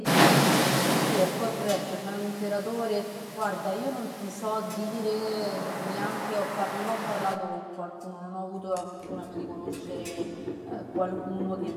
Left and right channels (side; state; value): both; identical; correlation 1.00